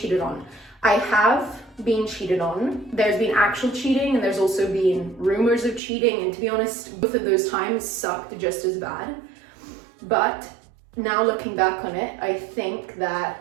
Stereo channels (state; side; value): drops out; left; at 5.8 s